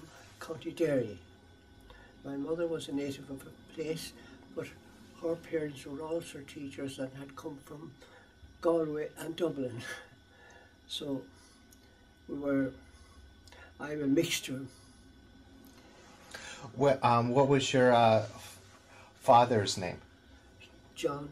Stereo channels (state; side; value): identical; both; correlation 1.00